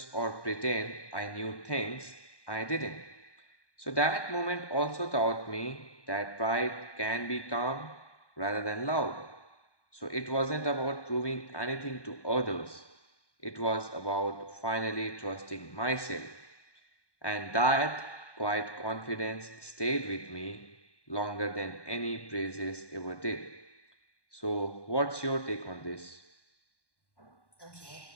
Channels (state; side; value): late; right; 1.1 ms